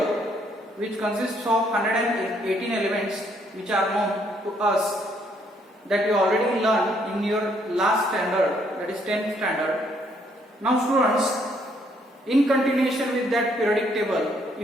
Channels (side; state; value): both; normal; correlation 0.69